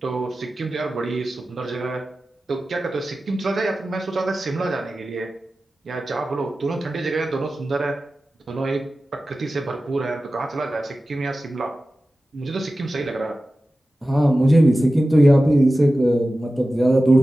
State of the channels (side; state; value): both; normal; correlation 0.95